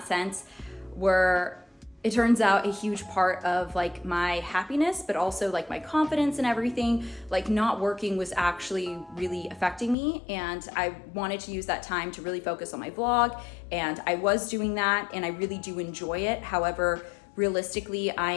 sense were, it turns out, a huge part of my happiness, but also my confidence and everything. Not working was actually really affecting me, and I wanted to use that time to really focus on my vlog, and I was doing that, and I really do enjoy it. However, realistically,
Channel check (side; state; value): right; drops out; at 10.0 s